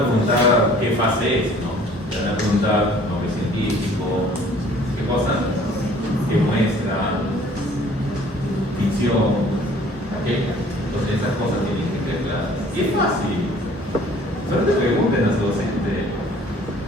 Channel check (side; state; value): both; normal; correlation 0.53